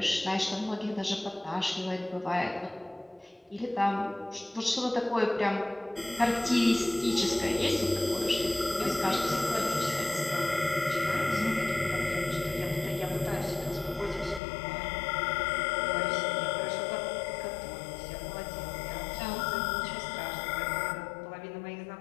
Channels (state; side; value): drops out; right; at 14.4 s